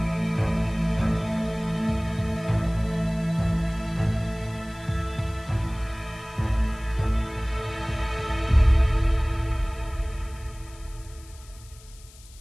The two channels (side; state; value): left; noise; hiss, 23 dB below the sound